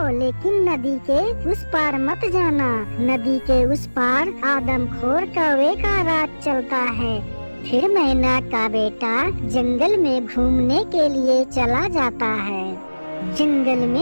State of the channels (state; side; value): inverted; both; correlation -1.00